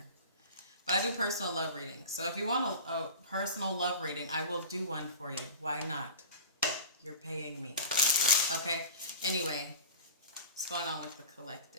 But I do personal love readings. So if you want a personal love reading, I will do one for you. Why not? You're paying me. Okay? Anyway, what's going on with the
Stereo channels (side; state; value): both; inverted; correlation -0.35